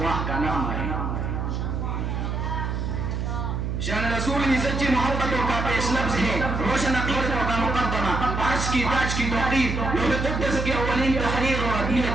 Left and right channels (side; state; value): right; noise; hum, 2 dB below the sound